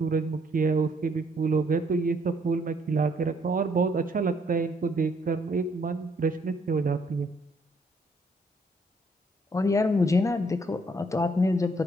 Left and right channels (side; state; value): both; normal; correlation 0.68